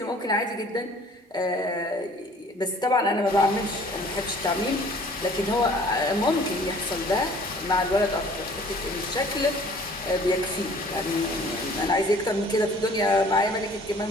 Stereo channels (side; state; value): both; normal; correlation 0.52